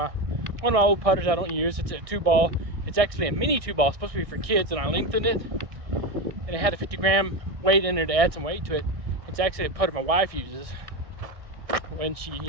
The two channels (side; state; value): left; late; 1.6 ms